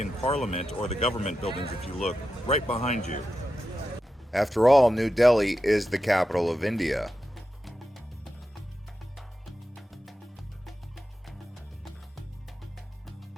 Parliament, or the government buildings if you look right behind you. After all, New Delhi is the capital of India.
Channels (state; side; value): normal; both; correlation 0.89